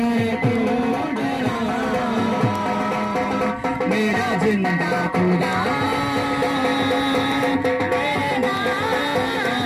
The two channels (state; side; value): identical; both; correlation 1.00